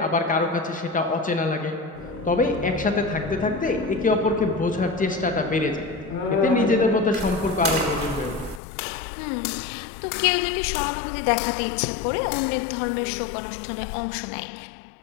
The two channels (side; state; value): right; drops out; at 8.6 s